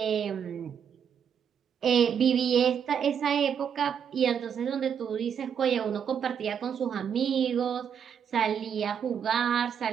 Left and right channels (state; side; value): quieter; left; 7.8 dB